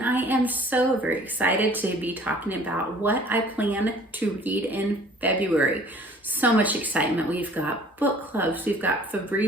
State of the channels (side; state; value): both; normal; correlation 0.51